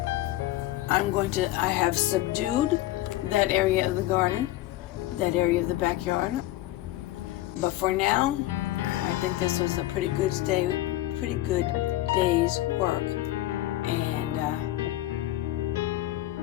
I have subdued that area of the garden, that area of the backyard. But for now, I think this was a pretty good day's work, and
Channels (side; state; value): right; quieter; 15.7 dB